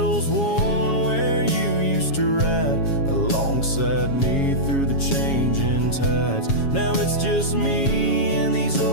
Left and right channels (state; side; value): late; right; 7.3 ms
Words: worn where you used to ride alongside me through the changing tides. Now it's just me and these